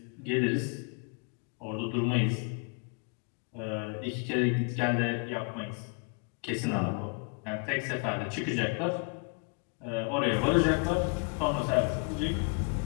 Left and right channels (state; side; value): quieter; right; 35.8 dB